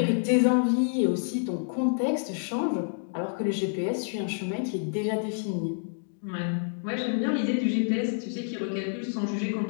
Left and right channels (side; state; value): right; silent; digital silence